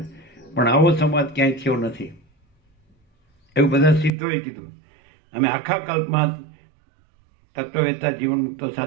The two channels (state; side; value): drops out; left; at 4.1 s